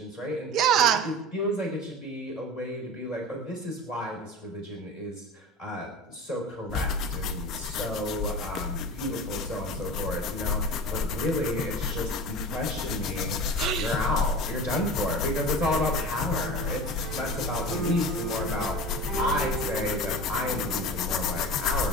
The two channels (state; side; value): normal; both; correlation 0.32